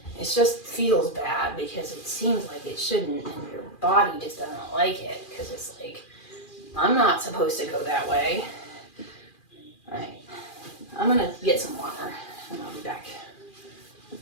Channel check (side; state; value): right; late; 2.4 ms